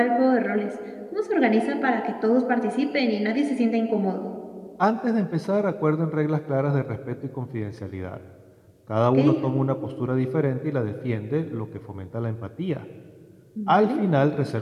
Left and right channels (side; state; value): both; identical; correlation 1.00